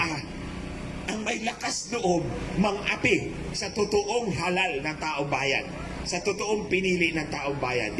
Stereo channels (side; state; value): both; identical; correlation 1.00